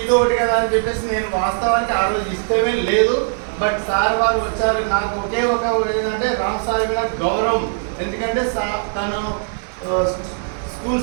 ఒకటి కదా అని చెప్పేసి నేను వాస్తవానికి ఆ రోజు ఇష్టమే లేదు. బట్ సార్ వారు వచ్చారు. నాకు ఒకే ఒక ఏంటంటే రామ్ సార్ మీద గౌరవం. ఎందుకంటే తను స్కూల్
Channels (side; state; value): left; silent; digital silence